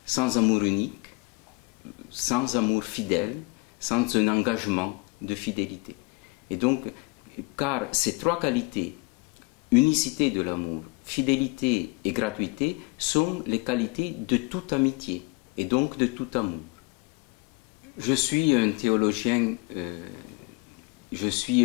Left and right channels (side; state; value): right; quieter; 27.3 dB